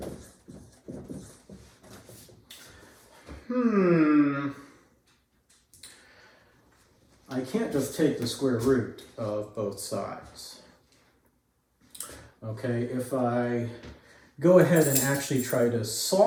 I can't just take the square root of both sides. Okay, if I go ahead and actually try to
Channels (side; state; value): both; identical; correlation 1.00